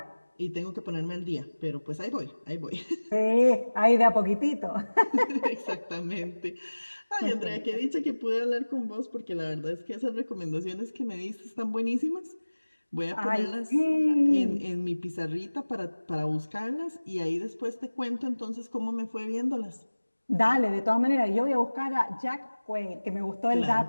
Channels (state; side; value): inverted; both; correlation -1.00